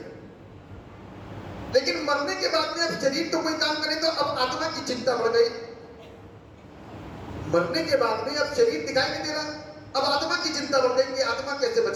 लेकिन मरने के बाद में अब शरीर तो कोई काम करे तो अब आत्मा की चिंता बढ़ गई। मरने के बाद में अब शरीर दिखाई नहीं दे रहा, अब आत्मा की चिंता बढ़ गई कि आत्मा कैसे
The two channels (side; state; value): both; identical; correlation 1.00